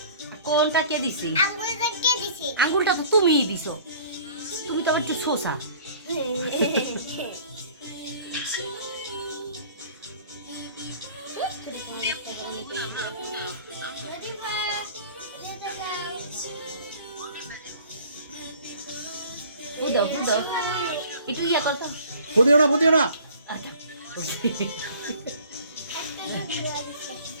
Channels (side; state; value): both; inverted; correlation -0.49